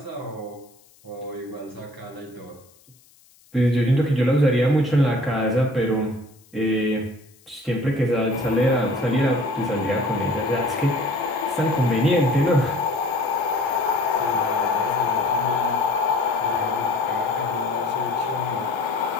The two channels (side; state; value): left; noise; hiss, 30 dB below the sound